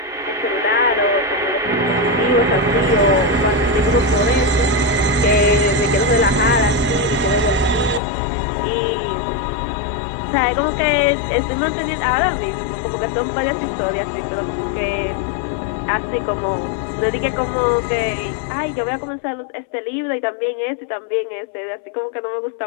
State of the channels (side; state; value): right; drops out; at 8.0 s